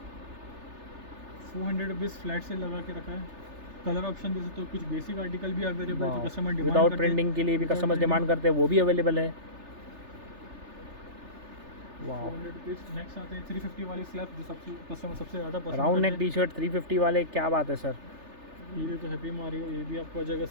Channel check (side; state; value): left; late; 3.3 ms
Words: 400 रुपीज़ फ्लैट से लगा के रखा है। कलर ऑप्शन जैसे तो कुछ बेसिक आर्टिकल भी अवेलेबल है, कस्टमर डिमांड विदाउट प्रिंटिंग के लिए भी कस्टमर्स डिमांड करते हैं, वो भी अवेलेबल है। 400 रुपीज़। नेक्स्ट आते हैं 350 वाली स्लैब, जो कस्टमर सबसे ज़्यादा पसंद राउंड नेक टी शर्ट 350 वाले, क्या बात है सर। ये तो हैप्पी मारियो, ये भी आपको आ जाएगा